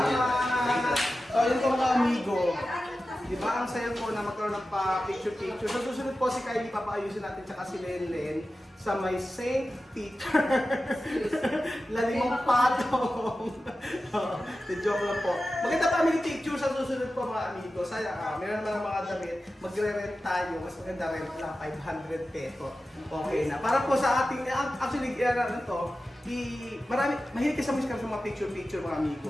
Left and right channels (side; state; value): both; normal; correlation 0.94